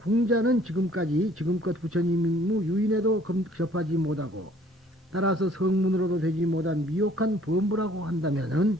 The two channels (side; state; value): both; normal; correlation 0.57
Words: 지금껏 부처님 유인에도 접하지 못하고 따라서 성문으로도 되지 못한 미혹한 범부라고 한다면은